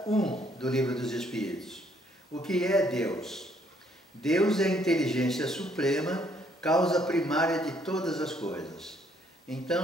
1 do Livro dos Espíritos. O que é Deus? Deus é a inteligência suprema, causa primária de todas as coisas.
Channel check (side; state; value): both; normal; correlation 0.67